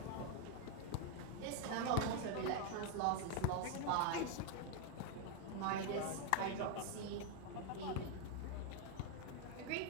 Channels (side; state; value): both; different; correlation 0.01